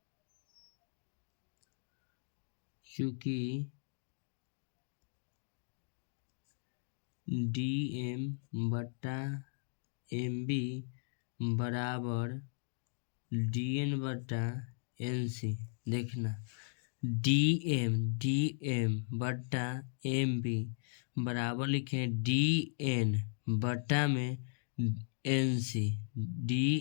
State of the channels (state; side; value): silent; right; digital silence